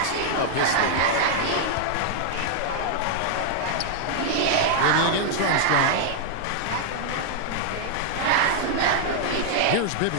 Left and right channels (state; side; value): different; both; correlation -0.01